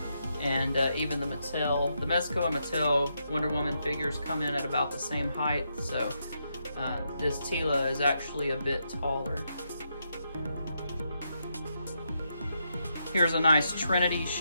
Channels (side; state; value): both; inverted; correlation -0.81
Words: And even the Mezco and Mattel Wonder Woman figures come in at about the same height, so this Tila is actually a bit taller. Here's a nice Trinity